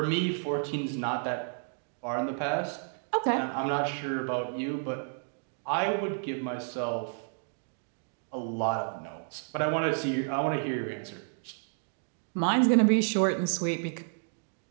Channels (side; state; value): left; silent; digital silence